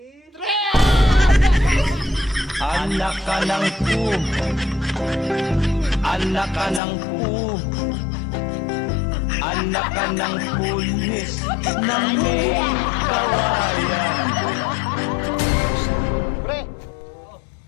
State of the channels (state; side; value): drops out; right; at 6.8 s